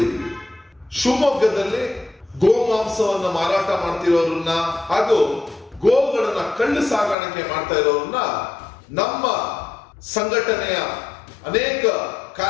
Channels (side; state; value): right; drops out; at 7.2 s